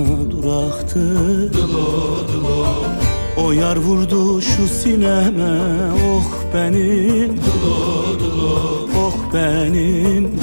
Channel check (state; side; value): inverted; both; correlation -1.00